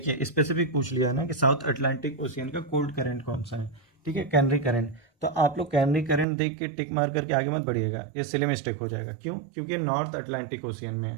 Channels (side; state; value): left; drops out; at 6.2 s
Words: स्पेसिफिक पूछ लिया है ना कि साउथ अटलांटिक ओशियन का कोल्ड करंट कौन सा है। ठीक है, कैनरी करंट, तो आप लोग कैनरी करंट देख के टिक मार करके आगे मत बढ़िएगा, ये सिली मिस्टेक हो जाएगा। क्यों, क्योंकि नॉर्थ अटलांटिक ओशियन में है।